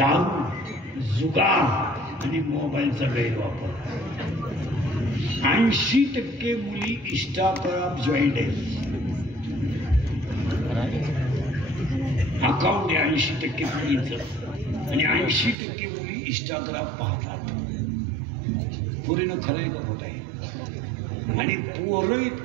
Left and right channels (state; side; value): drops out; left; at 15.6 s